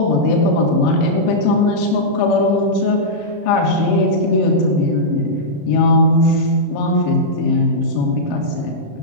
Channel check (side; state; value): right; late; 35 ms